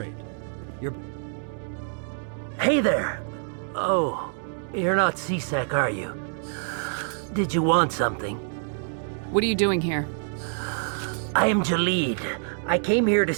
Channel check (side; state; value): left; silent; digital silence